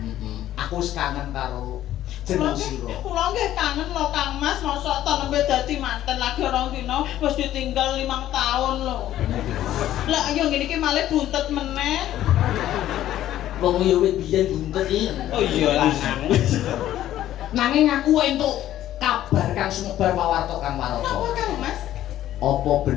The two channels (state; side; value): quieter; right; 12.8 dB